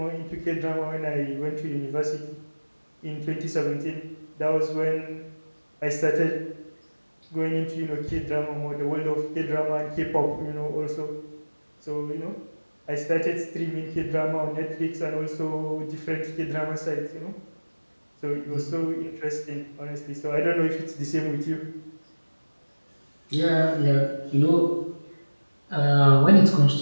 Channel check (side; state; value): both; inverted; correlation -1.00